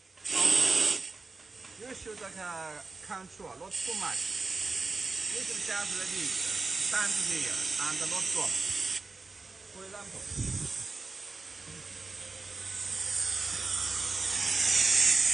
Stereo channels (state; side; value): quieter; left; 3.9 dB